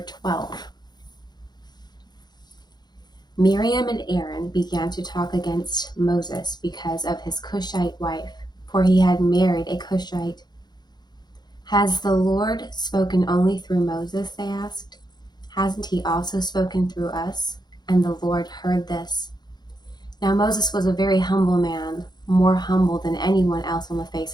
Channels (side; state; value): right; late; 0.20 ms